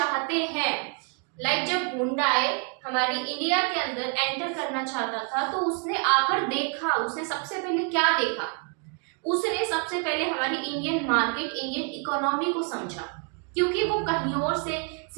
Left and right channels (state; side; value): quieter; left; 36.9 dB